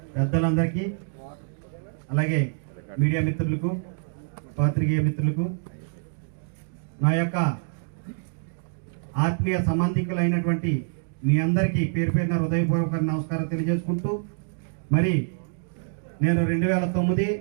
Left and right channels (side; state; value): left; silent; digital silence